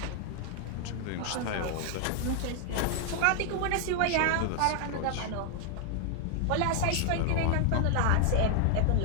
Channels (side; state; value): both; different; correlation 0.00